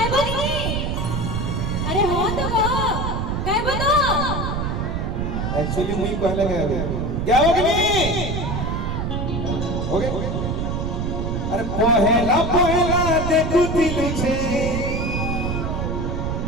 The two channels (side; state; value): right; noise; rumble, 1 dB below the sound